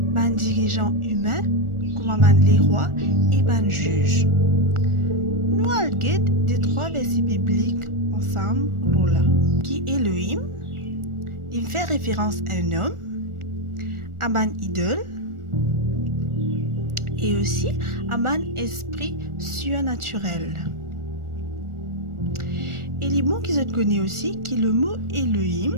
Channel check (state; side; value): late; left; 1.4 ms